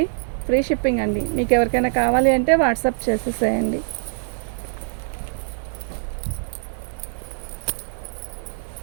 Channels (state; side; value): silent; left; 63 dB below the other